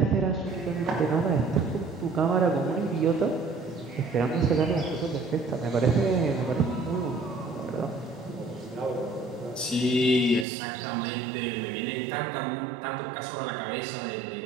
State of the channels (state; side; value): drops out; left; at 10.5 s